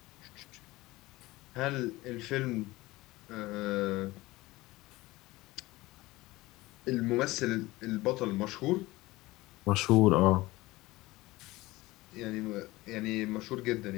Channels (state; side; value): quieter; right; 19.6 dB